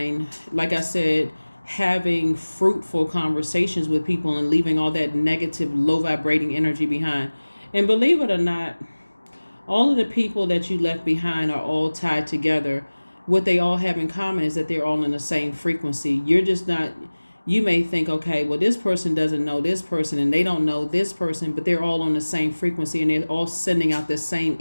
like I said, having fruitful conversations with people and leaving all that negative, low vibrating energy behind. And believe it or not, all of the people that you left behind are all tied together. What they all have in common is that they're all in the same frequency. You're just not, you may think, okay, well, this person doesn't know this person and they don't know this person, but they're all on the same frequency and they're all sending out the same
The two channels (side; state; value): both; inverted; correlation -1.00